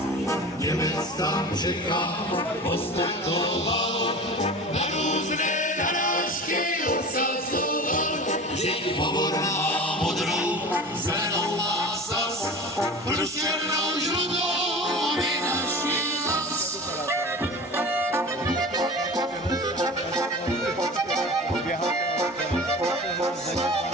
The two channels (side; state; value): both; normal; correlation 0.35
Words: Němec tam Čechá ostentoval, na různé narážky obsazoval, že povorná modrou, zelenou má sas, pro černou žlutou vynaší zas.